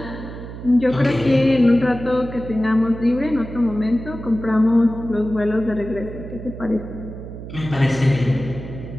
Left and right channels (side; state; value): right; noise; hum, 11 dB below the sound